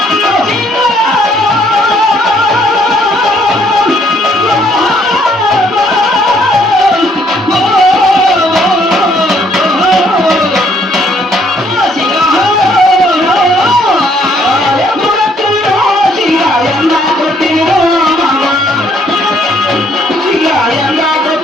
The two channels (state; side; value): normal; both; correlation 0.66